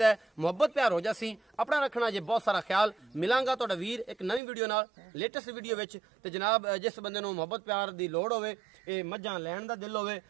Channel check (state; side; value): drops out; left; at 4.4 s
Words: ਹੈ। ਮੁਹੱਬਤ ਪਿਆਰ ਹੋ ਜਾਸੀ। ਆਪਣਾ ਰੱਖਣਾ ਜੇ ਬਹੁਤ ਸਾਰਾ ਖਿਆਲ। ਮਿਲਾਂਗਾ ਤੁਹਾਡਾ ਵੀਰ ਇੱਕ ਨਵੀਂ ਵੀਡੀਓ ਨਾਲ, ਲੇਟੈਸਟ ਵੀਡੀਓ ਵਿੱਚ। ਤੇ ਜਨਾਬ ਜਿਸ ਬੰਦੇ ਨੂੰ ਮੁਹੱਬਤ ਪਿਆਰ ਦੀ ਲੋੜ ਹੋਵੇ, ਇਹ ਮੱਝਾਂ ਲੈਣ ਦਾ ਦਿਲ ਹੋਵੇ,